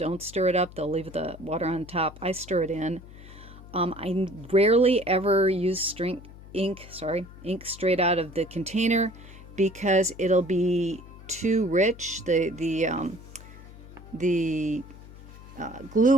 stir it up. They'll leave the water on top. I stir it in. I rarely ever use ink straight out of the container because it'll be too rich. The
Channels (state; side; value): noise; left; hum, 18 dB below the sound